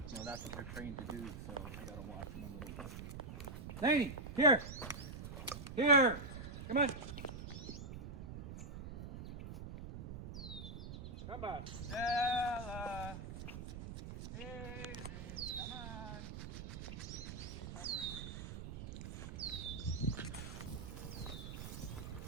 you know that's what they're trained to do. So I gotta watch them a little bit. Laney, here, here, come on. Come on. Stella. Daisy, come on.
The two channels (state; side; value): noise; right; rumble, 8 dB below the sound